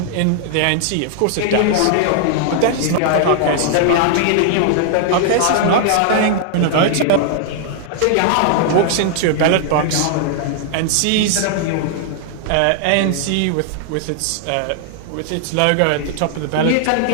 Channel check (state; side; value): different; both; correlation 0.00